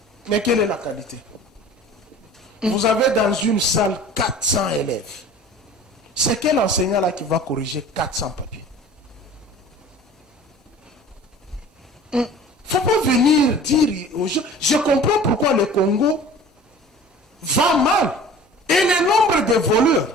Mais quelle est la qualité? Vous avez dans une salle 400 élèves. C'est quel enseignant là qui va corriger 400 papiers? Il ne faut pas venir dire aux gens. Je comprends pourquoi le Congo va mal. Et le nombre de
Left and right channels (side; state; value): both; normal; correlation 0.43